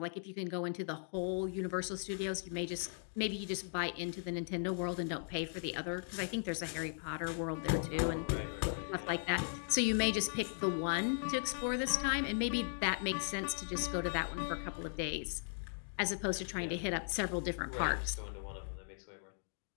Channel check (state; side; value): silent; right; digital silence